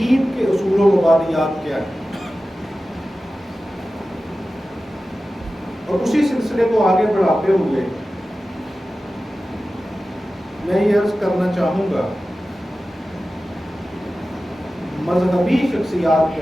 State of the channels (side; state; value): both; normal; correlation 0.95